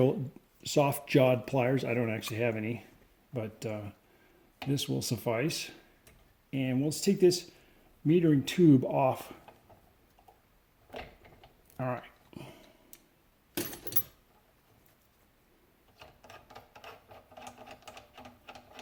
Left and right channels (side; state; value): both; identical; correlation 1.00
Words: pliers. I don't actually have any, but this will suffice. And let's take this metering tube off. All right.